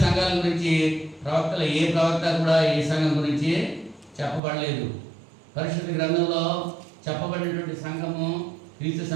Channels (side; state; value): left; drops out; at 4.4 s